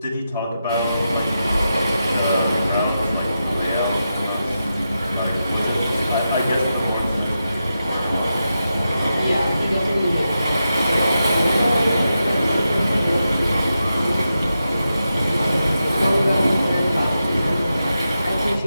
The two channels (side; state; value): both; inverted; correlation -0.89